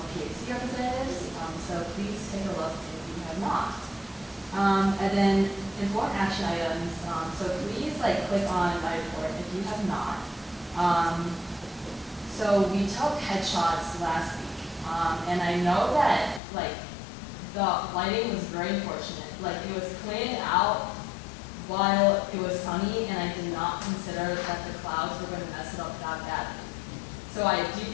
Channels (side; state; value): right; drops out; at 16.4 s